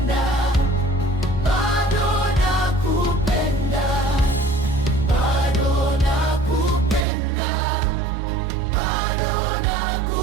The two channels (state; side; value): drops out; left; at 7.1 s